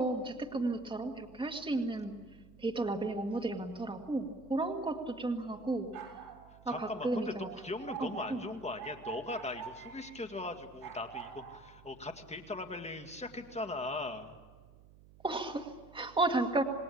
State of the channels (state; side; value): noise; right; hum, 22 dB below the sound